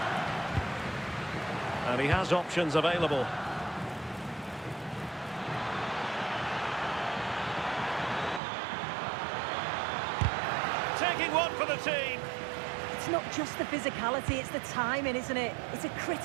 And he has options available. Taking one for the team. It's not just the physicality, it's the timing, isn't it? It's a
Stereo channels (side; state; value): left; drops out; at 8.4 s